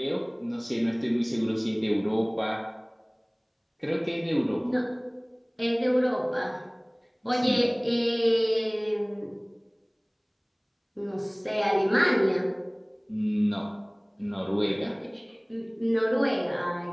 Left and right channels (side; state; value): both; identical; correlation 1.00